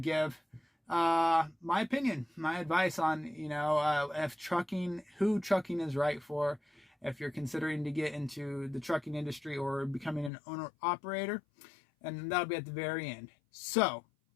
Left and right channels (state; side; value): drops out; right; at 10.3 s